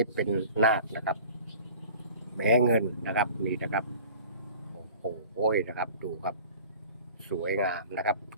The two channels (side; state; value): both; inverted; correlation -0.45